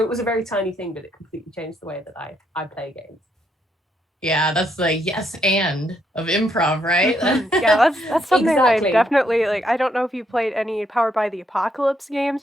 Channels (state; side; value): normal; both; correlation 0.75